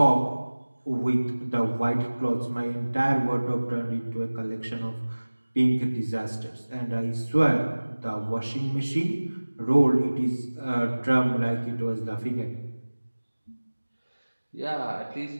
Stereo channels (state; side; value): inverted; both; correlation -1.00